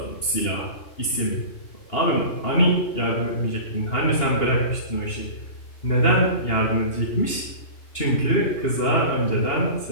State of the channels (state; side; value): late; right; 2.8 ms